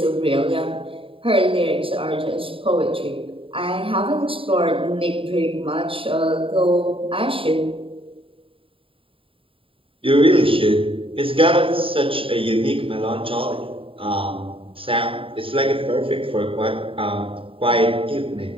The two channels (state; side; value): late; left; 0.26 ms